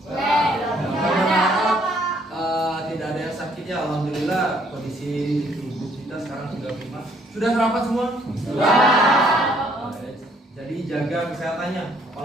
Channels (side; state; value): both; normal; correlation 0.64